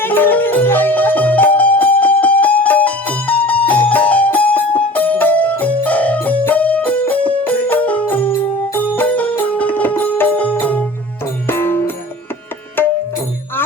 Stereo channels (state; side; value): normal; both; correlation 0.41